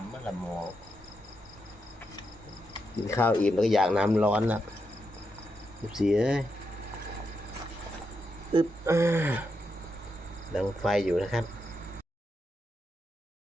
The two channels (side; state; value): both; normal; correlation 0.84